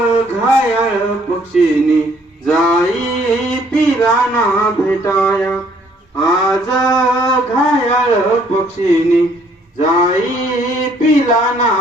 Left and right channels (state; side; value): normal; both; correlation 0.63